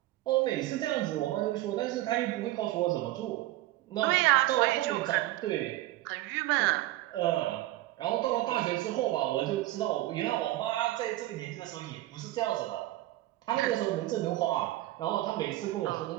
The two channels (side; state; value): left; quieter; 16.6 dB